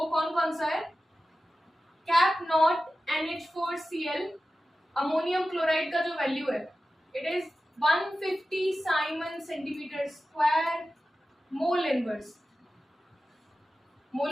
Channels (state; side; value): normal; both; correlation 0.94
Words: कौन कौन सा है, cap not NH4Cl ammonium chloride का जो वैल्यू है it is 150 Simon centimeter square mole inverse।